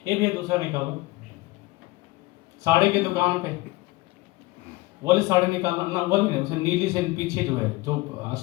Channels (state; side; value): quieter; right; 20.2 dB